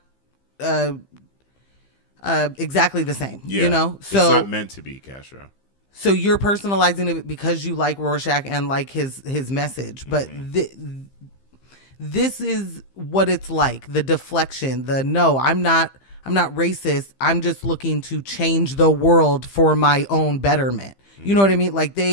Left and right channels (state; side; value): late; right; 15 ms